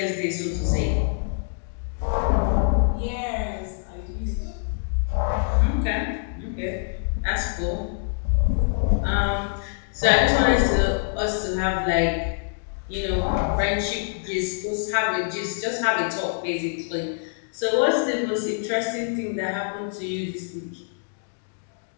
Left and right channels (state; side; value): silent; right; digital silence